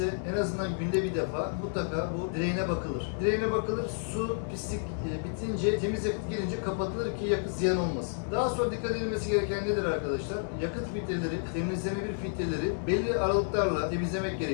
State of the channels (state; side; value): silent; right; 57 dB below the other